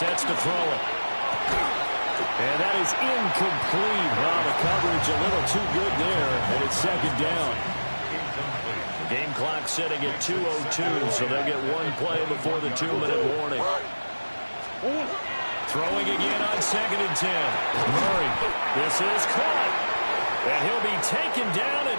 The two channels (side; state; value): both; inverted; correlation -1.00